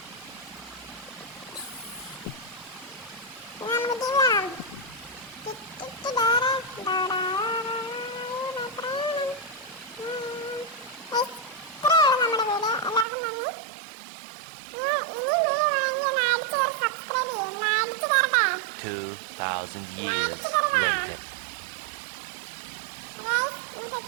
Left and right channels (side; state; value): left; drops out; at 13.1 s